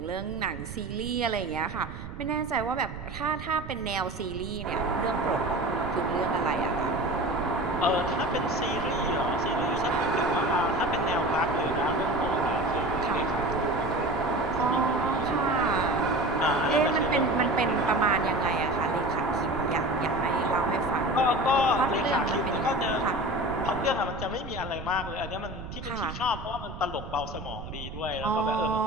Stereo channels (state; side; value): noise; right; rumble, 10 dB below the sound